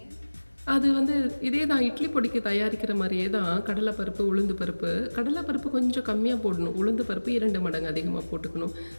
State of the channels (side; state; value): both; inverted; correlation -1.00